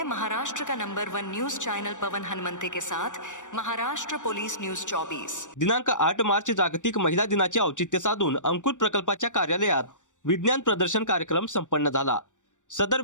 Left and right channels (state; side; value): late; right; 0.86 ms